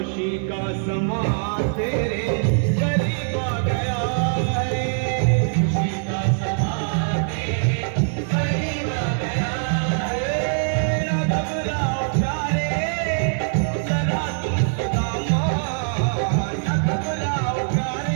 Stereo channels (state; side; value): silent; left; digital silence